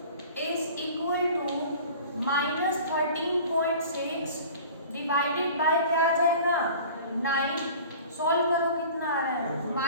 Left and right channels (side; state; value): both; inverted; correlation -0.43